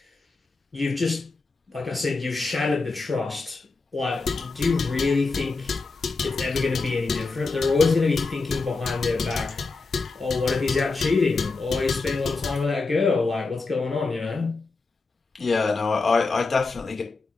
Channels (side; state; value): right; quieter; 3.9 dB